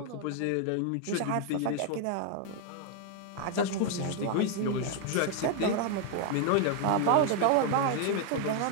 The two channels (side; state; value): both; different; correlation 0.00